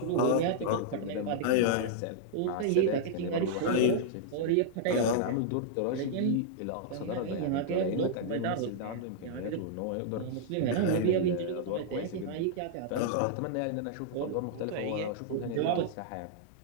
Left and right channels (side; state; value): both; different; correlation -0.01